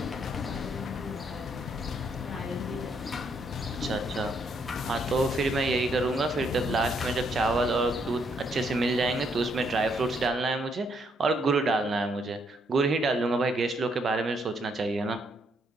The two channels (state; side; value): normal; both; correlation 0.73